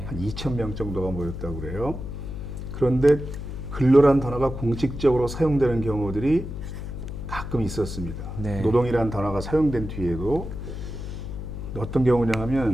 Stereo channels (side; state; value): left; noise; hum, 7 dB below the sound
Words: 한 2,000명 정도가 모였다고 그래요. 그런데 근로란 단어가 공식적으로 사용되는 경우들이 가끔 있었습니다. 네. 노동이라는 단어가 사용된 뒤에도 어떤 경우냐